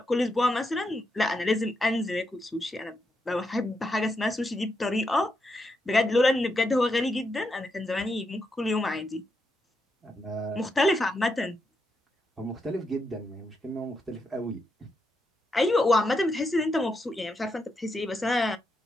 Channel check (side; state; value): both; normal; correlation 0.83